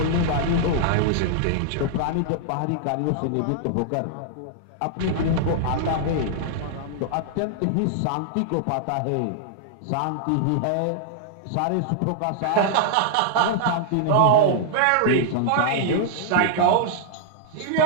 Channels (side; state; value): both; different; correlation -0.01